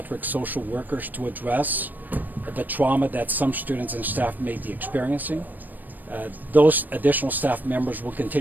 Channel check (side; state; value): left; late; 0.087 ms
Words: social workers to address the trauma that some students and staff may be experiencing. Those additional staff members will